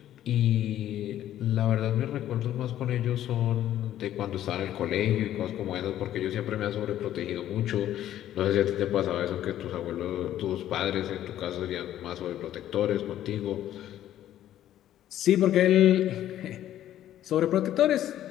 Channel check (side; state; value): right; quieter; 12.1 dB